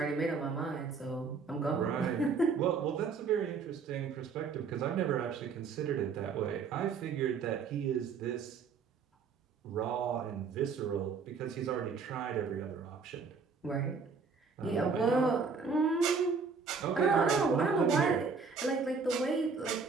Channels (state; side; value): quieter; left; 5.1 dB